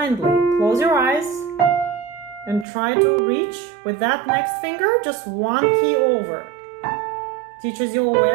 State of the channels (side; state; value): left; drops out; at 2.7 s